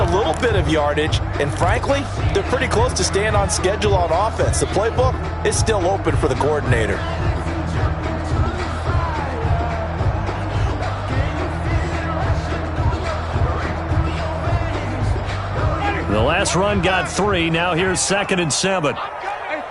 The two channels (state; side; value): identical; both; correlation 1.00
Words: little bit of yardage, and frankly, they're pretty close to staying on schedule on offense. The playbook is still open for the coordinator. The last run got 3. Now here's 2nd and 7.